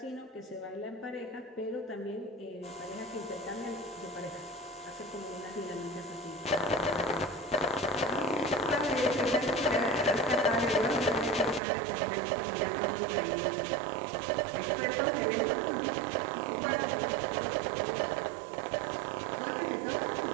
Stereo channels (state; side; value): drops out; left; at 11.6 s